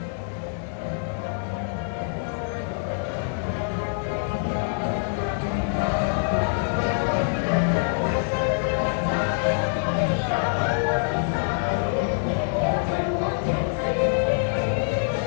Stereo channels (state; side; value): silent; right; digital silence